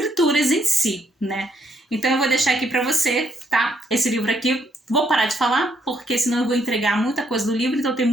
em si, né? Então eu vou deixar aqui para você, tá? Esse livro aqui, vou parar de falar, porque senão eu vou entregar muita coisa do livro, então tem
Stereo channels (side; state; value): both; normal; correlation 0.72